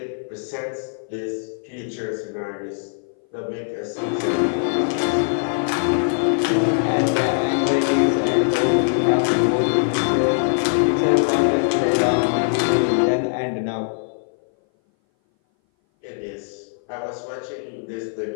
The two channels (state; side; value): silent; right; 59 dB below the other